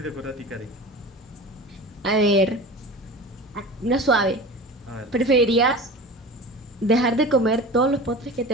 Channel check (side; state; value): both; normal; correlation 0.35